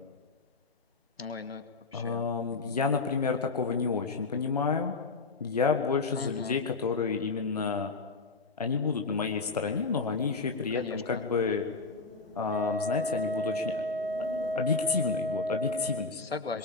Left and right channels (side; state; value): right; quieter; 4.0 dB